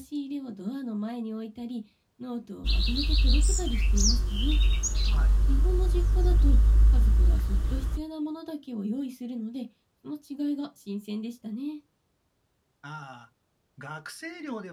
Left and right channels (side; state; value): both; identical; correlation 1.00